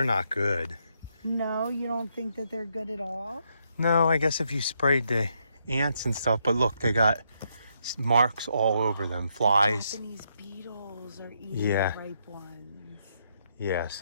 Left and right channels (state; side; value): inverted; both; correlation -0.77